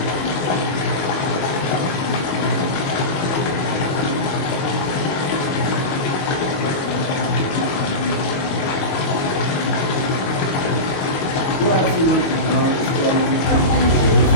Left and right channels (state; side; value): late; right; 22 ms